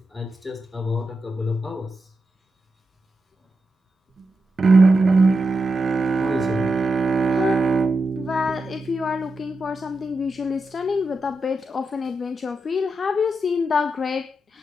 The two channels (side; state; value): both; normal; correlation 0.87